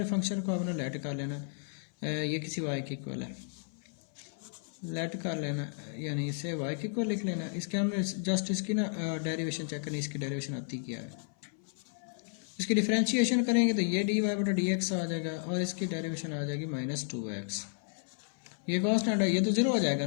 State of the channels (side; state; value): right; silent; 56 dB below the other